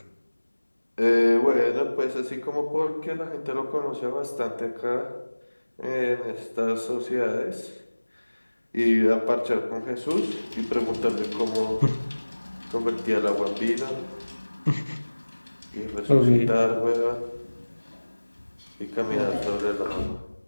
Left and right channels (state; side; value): inverted; both; correlation -1.00